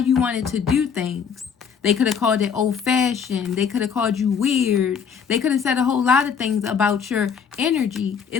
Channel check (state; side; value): quieter; right; 6.9 dB